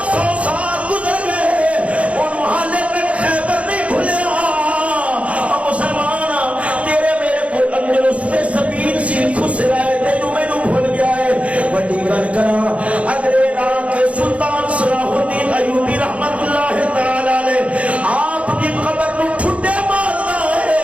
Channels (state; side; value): late; left; 0.064 ms